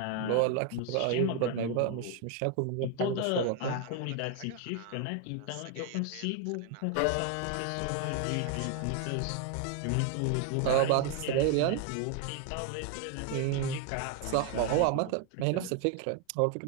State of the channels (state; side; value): different; both; correlation 0.00